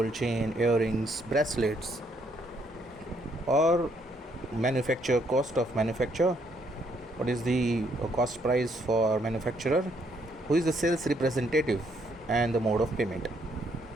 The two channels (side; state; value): both; normal; correlation 0.70